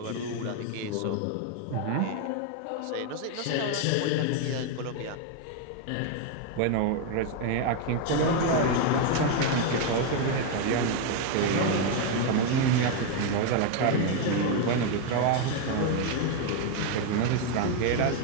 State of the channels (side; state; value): both; different; correlation 0.01